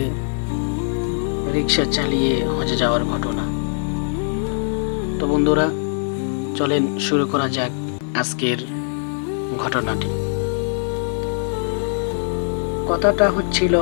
রিক্সা চালিয়ে হজে যাওয়ার ঘটনা। তো বন্ধুরা, চলেন শুরু করা যাক আজকের ঘটনাটি। কথাটা হচ্ছিল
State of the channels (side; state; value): right; silent; digital silence